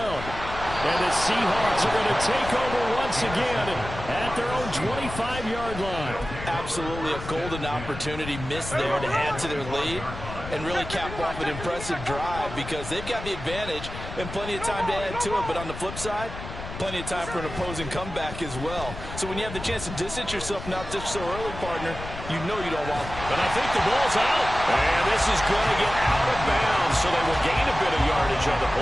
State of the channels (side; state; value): left; noise; rumble, 10 dB below the sound